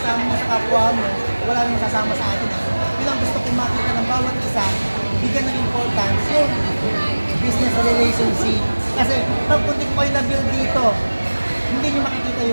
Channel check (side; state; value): both; inverted; correlation -1.00